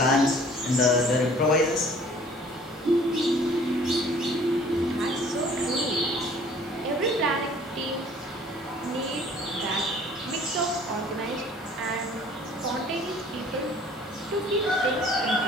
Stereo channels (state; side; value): normal; both; correlation 0.53